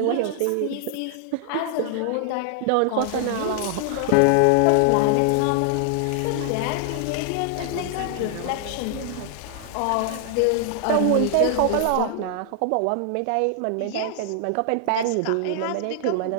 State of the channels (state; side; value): different; both; correlation -0.01